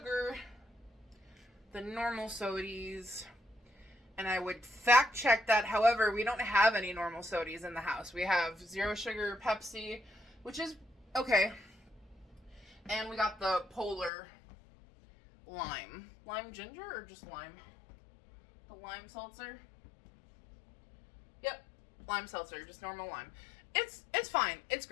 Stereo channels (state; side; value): drops out; right; at 14.1 s